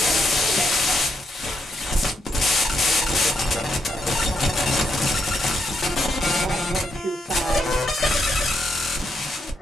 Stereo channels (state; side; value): normal; both; correlation 0.79